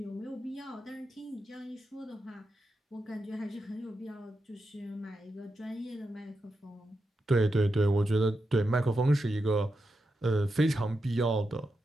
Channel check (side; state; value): both; normal; correlation 0.87